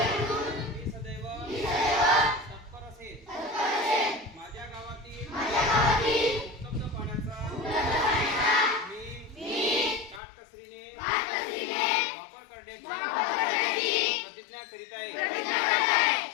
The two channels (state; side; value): drops out; right; at 10.2 s